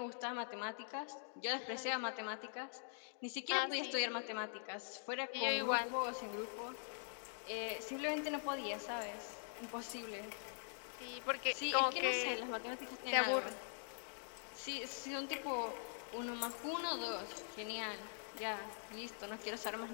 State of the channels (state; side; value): silent; right; digital silence